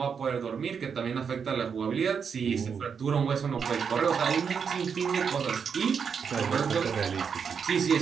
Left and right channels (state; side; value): quieter; left; 6.5 dB